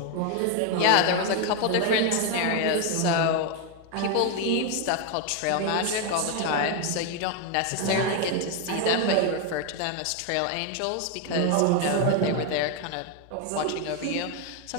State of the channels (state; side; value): different; both; correlation 0.01